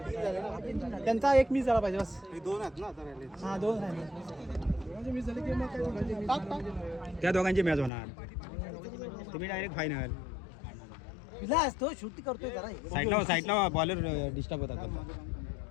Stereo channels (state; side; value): drops out; right; at 7.9 s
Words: त्यांचा एक मिस झाला पाहिजे बस दोन आहेत ना आता राहिले हा 2 राहिले त्या दोघांची मॅच होणार तुम्ही डायरेक्ट फायनल विलास तो शूट करतोय जरा साईडला बॉलर डिस्टर्ब होतात